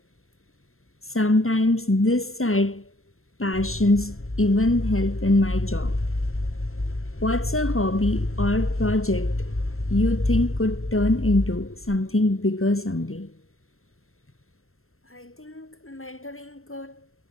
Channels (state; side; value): late; right; 0.62 ms